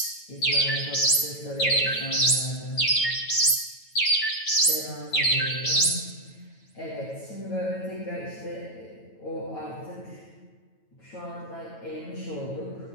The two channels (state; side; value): late; right; 9.1 ms